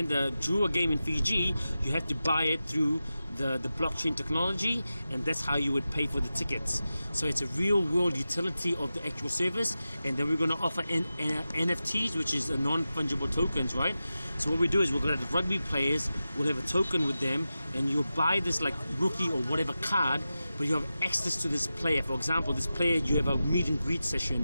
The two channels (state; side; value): inverted; both; correlation -0.93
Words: the Drua game in Fiji, you had to buy it through the blockchain technology, and that's how you would pay for the tickets. So it's a real world utility of the actual service, and then we're going to offer NFTs, which is a non-fungible tokens, right? So what we do is we're going to have the rugby players, we'll have a token with them, and you'll buy this like rookie or whatever card, but you have access to this player. For example, this player, you have a meet and greet